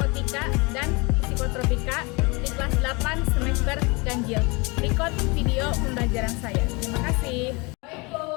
dan psikotropika di kelas 8 semester ganjil. Berikut video pembelajaran saya. Terima kasih.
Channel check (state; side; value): quieter; right; 27.6 dB